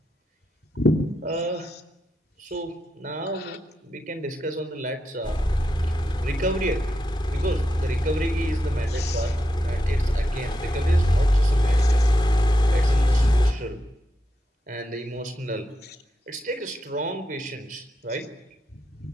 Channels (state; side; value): normal; both; correlation 0.86